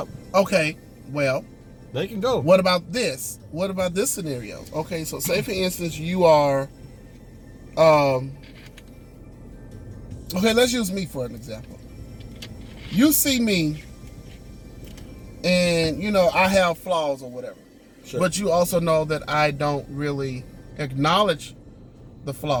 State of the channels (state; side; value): identical; both; correlation 1.00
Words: Okay. Well, they can go. What about this? What about this scenario? Okay, so say for instance you are, okay, let's use me for an example. You see me, and I have flaws or whatever. Sure. But you also know that I don't really acknowledge the